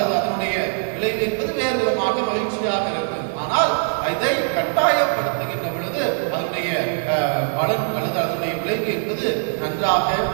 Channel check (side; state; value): left; silent; digital silence